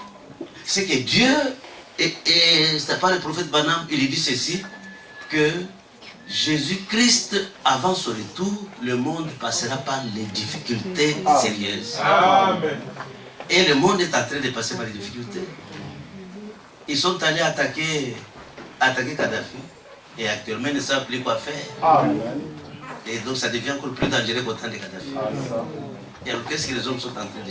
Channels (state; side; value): identical; both; correlation 1.00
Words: C'est que Dieu, et c'est pas le prophète Branham, il dit ceci, que Jésus-Christ, avant son retour, le monde passera par les difficultés sérieuses. Amen. Et le monde est en train de passer par les difficultés. Ils sont allés attaquer Kadhafi. Et actuellement, ils ne savent plus quoi faire. Amen. Et donc, ça devient encore plus dangereux qu'au temps de Kadhafi. Et alors, qu'est-ce que les hommes sont en train de